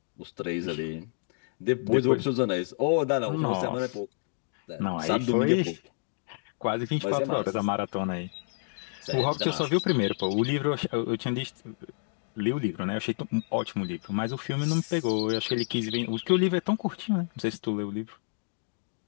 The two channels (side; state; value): right; silent; digital silence